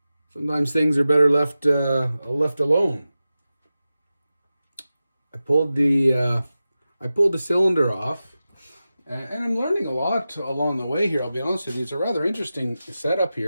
sometimes things are better left alone. I pulled the cylinder off, and I'm learning a lot along the way here. I'll be honest with you. It's a rather interesting setup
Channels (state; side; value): inverted; both; correlation -0.94